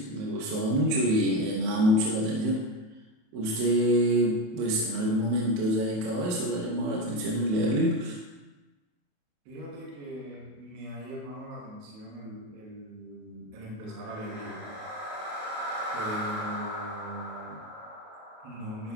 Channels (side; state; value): left; late; 28 ms